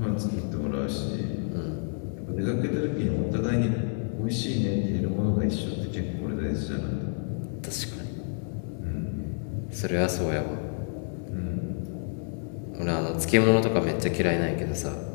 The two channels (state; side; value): silent; right; digital silence